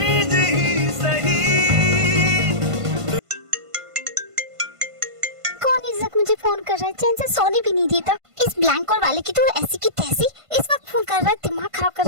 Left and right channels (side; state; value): left; late; 1.5 ms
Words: ही सही, कर रहा है, चैन से सोने भी नहीं देता। इस ब्लैंक वाले की तो ऐसी की तैसी इस वक्त फोन कर रहा है, दिमाग खराब कर